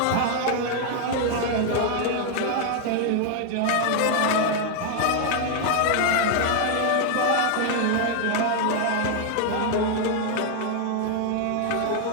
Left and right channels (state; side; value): different; both; correlation 0.00